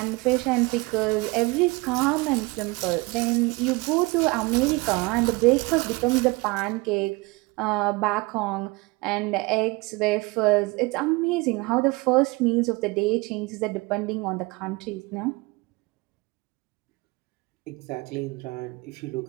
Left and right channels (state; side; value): quieter; left; 24.4 dB